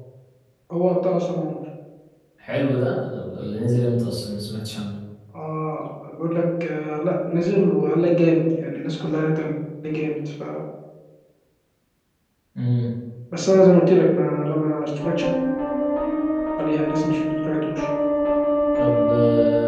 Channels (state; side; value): identical; both; correlation 1.00